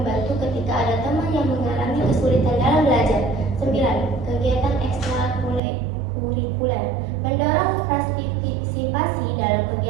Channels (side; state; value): left; drops out; at 5.6 s